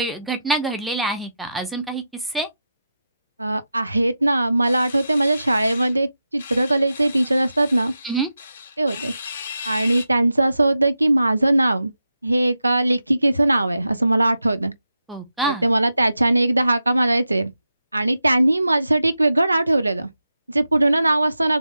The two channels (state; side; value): inverted; both; correlation -0.88